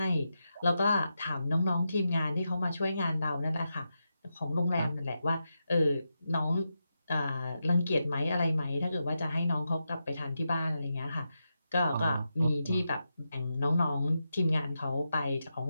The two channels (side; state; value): both; inverted; correlation -0.87